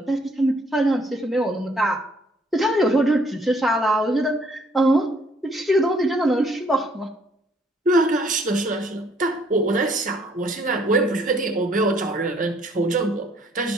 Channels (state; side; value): normal; both; correlation 0.64